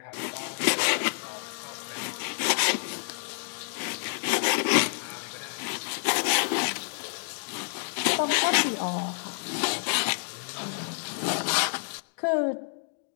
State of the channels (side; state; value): right; silent; digital silence